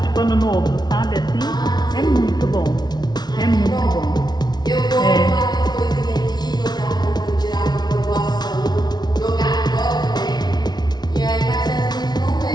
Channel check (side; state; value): right; late; 0.20 ms